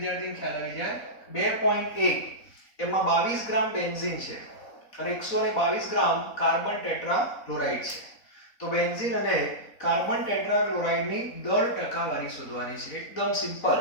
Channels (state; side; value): late; right; 4.0 ms